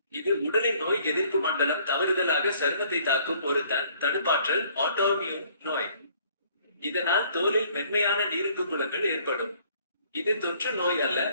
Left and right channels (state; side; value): inverted; both; correlation -0.59